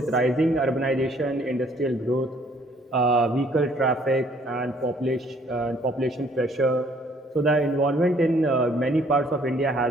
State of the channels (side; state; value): both; normal; correlation 0.61